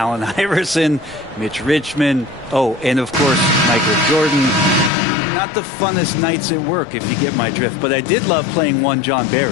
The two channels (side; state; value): right; drops out; at 4.9 s